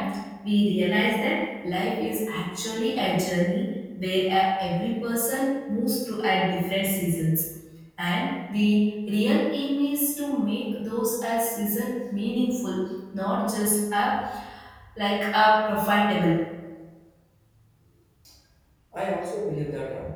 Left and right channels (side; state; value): both; identical; correlation 1.00